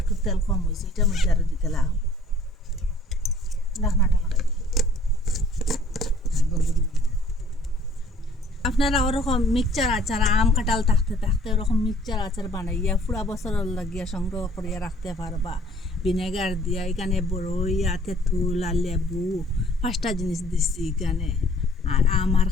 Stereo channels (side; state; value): both; normal; correlation 0.55